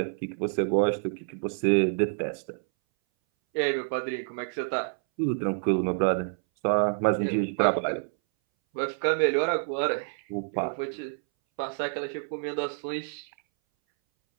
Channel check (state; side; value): silent; left; 59 dB below the other